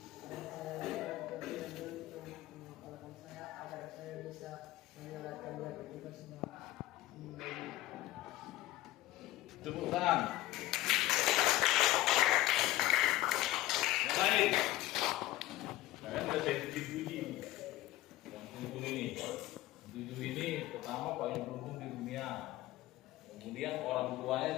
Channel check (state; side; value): quieter; right; 16.7 dB